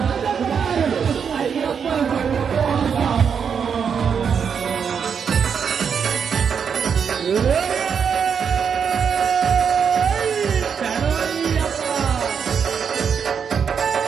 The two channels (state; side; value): quieter; left; 6.9 dB